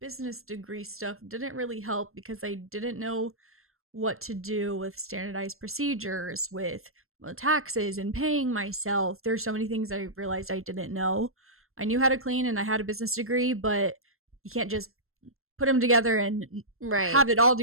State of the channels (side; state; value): left; late; 0.62 ms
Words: degree stuff didn't really help because I didn't know what to do with standardized procedures, with taxes and paying myself. There's so many things I realized I didn't know. I knew how to clean and I had a business degree, but you can't just put them together and Right. have it all